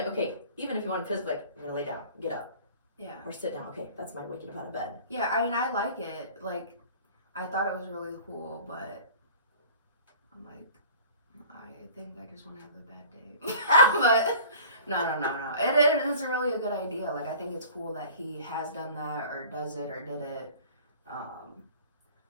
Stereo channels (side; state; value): both; inverted; correlation -0.44